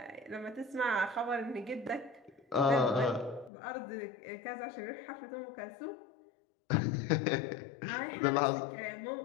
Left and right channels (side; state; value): right; drops out; at 3.5 s